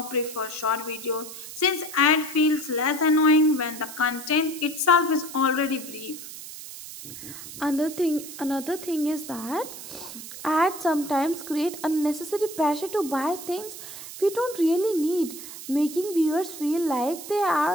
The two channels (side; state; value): right; noise; hiss, 12 dB below the sound